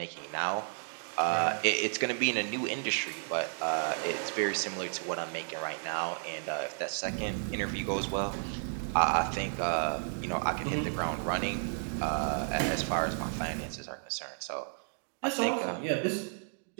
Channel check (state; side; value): silent; left; digital silence